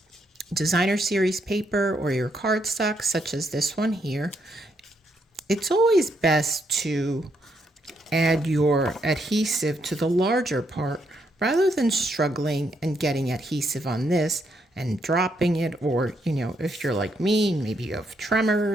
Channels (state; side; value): normal; both; correlation 0.76